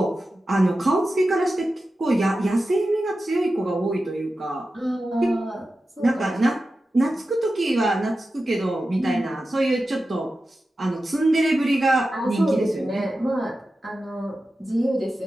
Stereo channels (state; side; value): normal; both; correlation 0.92